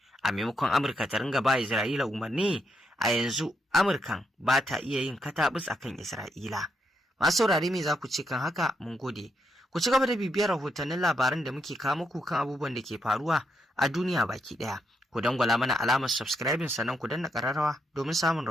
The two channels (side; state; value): both; normal; correlation 0.79